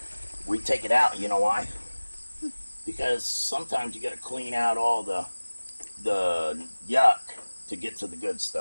We take it out. You know why? Because sometimes you got to clean out all the yuck to get to the good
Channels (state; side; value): inverted; both; correlation -1.00